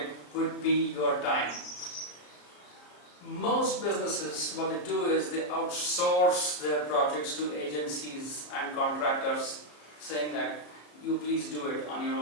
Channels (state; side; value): late; right; 34 ms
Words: would be your time. Most businesses, what they do is they outsource their projects to agencies and contractors, saying that you please do it on your